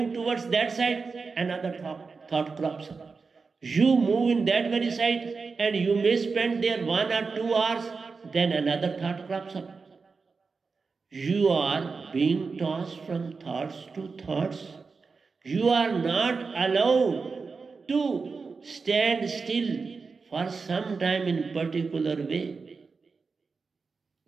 towards that side, another thought crops up. You move in that very side and you may spend there 1 or 2 hours, then another thought crops up. You are being tossed from thoughts to thoughts. You are not allowed to stand still for some time in particular way.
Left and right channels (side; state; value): left; quieter; 4.7 dB